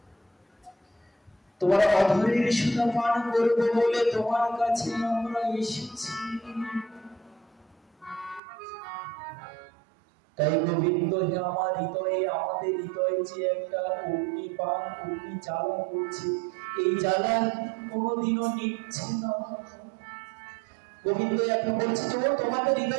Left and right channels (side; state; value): left; drops out; at 8.4 s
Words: তোমার অধরের সুধা পান করবো বলে তোমার কাছে আমরা এসেছি। তাই গোবিন্দ হে আমার হৃদয়ে, আমাদের হৃদয়ে যে একটা অগ্নিপান, অগ্নি জ্বালা করছে, এই জ্বালা কোনোদিনও নিচ্ছে না। গোবিন্দ এখন বলছে, তোমাদের